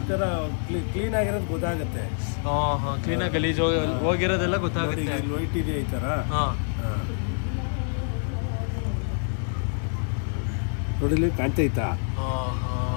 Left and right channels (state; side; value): silent; right; 61 dB below the other